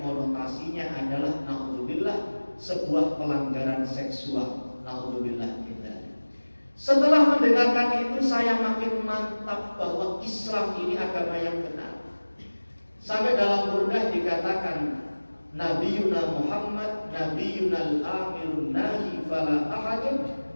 konotasinya adalah naudzubillah sebuah pelanggaran seksual. Naudzubillah kita. Setelah mendengarkan itu saya makin mantap bahwa Islam ini agama yang benar. Sampai dalam Burdah dikatakan Nabiyuna Muhammad Nabiyuna al-amirun nahi fala ahadun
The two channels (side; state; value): both; inverted; correlation -1.00